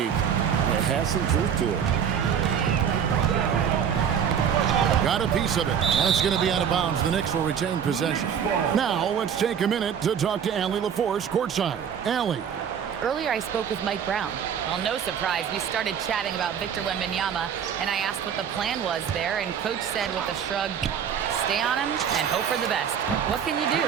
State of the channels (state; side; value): quieter; left; 8.0 dB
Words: it has some truth to it. Got a piece of it, and it's going to be out of bounds. The Knicks will retain possession. Now, let's take a minute to talk to Allie LaForce courtside. Allie. Earlier, I spoke with Mike Brown. Well, no surprise, we started chatting about Victor Wembanyama, and I asked what the plan was there, and Coach said with a shrug, stay on him and hope for the best. What can you do?